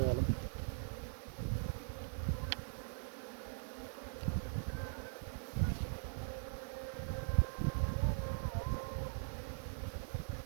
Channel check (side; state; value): left; silent; digital silence